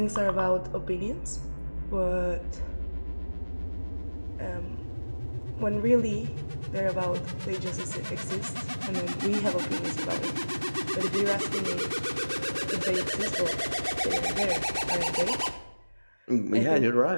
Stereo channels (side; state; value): both; inverted; correlation -1.00